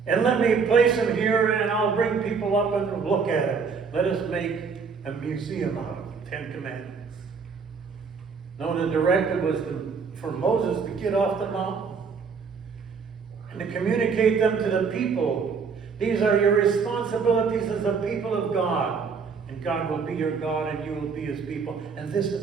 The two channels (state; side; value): quieter; left; 5.5 dB